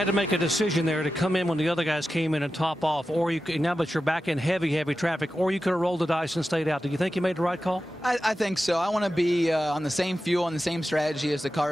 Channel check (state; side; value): normal; both; correlation 0.92